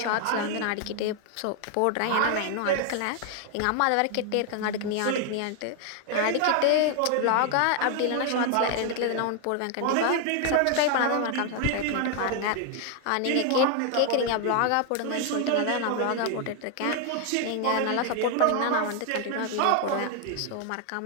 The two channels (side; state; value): both; different; correlation 0.00